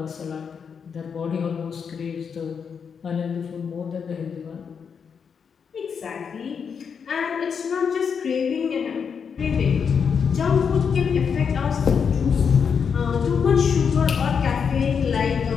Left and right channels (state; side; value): quieter; right; 6.5 dB